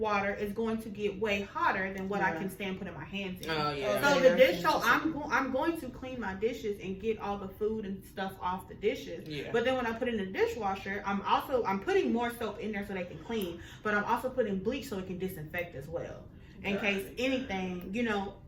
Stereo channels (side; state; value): both; identical; correlation 1.00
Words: is going to get way hotter than what I can stand putting my hands in. Oh yeah. So so I'm going to clean my dishes and get all the food and stuff off the dishes. Yeah. But then when I put it in the dishwasher, I'm putting more soap in there so they can clean, but I'm also putting bleach so it can disinfect as well. In case anything,